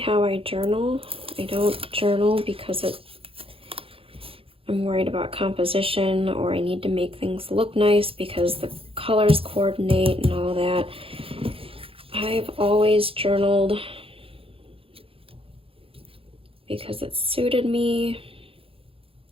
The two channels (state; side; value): late; left; 0.27 ms